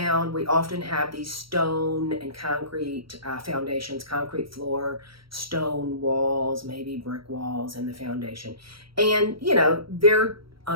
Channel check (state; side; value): late; left; 0.75 ms